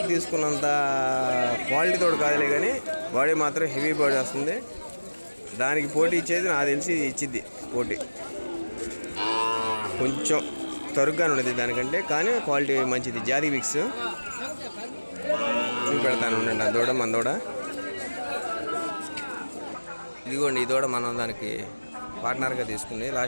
తీసుకున్నంత క్వాలిటీ తోడు కాదులే, కానీ బాడీ మాత్రం హెవీ బాడీ వస్తుంది. దానికి పోటీ ఇచ్చేది నాకు తెలిసి ఇచ్చిద్ది పోటీ. కొంచెం తరుగ్గానే ఉండేది దానికంటే, కానీ క్వాలిటీ మంచిది. జాతి విక్స్ చూపెడతాను ఉండండి. ఆ దూడ మన దూడ ఇదిగోండి. ఈ దూడ మనం దానికి పార్ట్నర్గా తీసుకుంది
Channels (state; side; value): inverted; both; correlation -1.00